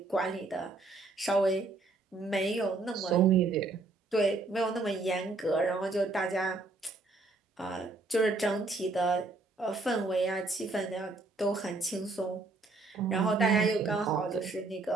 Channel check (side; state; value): left; quieter; 3.4 dB